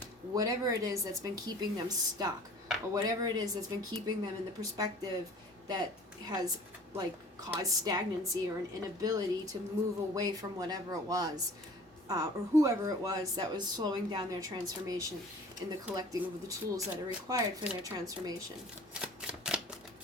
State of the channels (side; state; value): both; normal; correlation 0.47